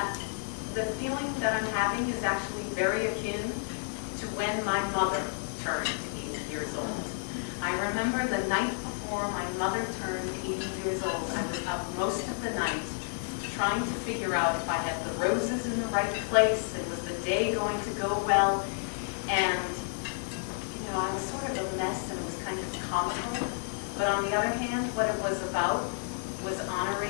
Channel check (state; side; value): silent; right; digital silence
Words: the feeling that I'm having is actually very akin to when my mother turned 80 years old. I remember the night before my mother turned 80 years old, I was up most of the night trying to figure out if I had the roses in the right place and was the day going to go well. And, you know, I was sort of a mess and it was kind of comical. But on the other hand, what it was about was